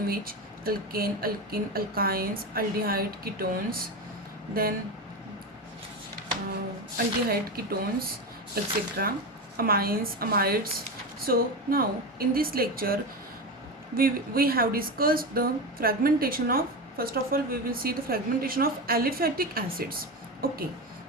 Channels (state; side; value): normal; both; correlation 0.19